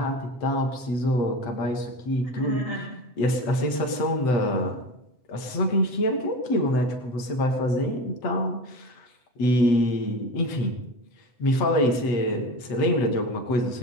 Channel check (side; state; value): right; late; 7.9 ms